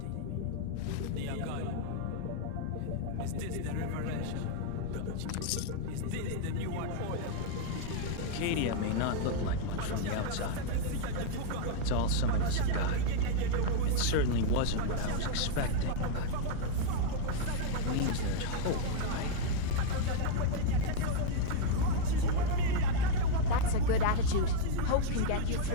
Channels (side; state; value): both; different; correlation 0.00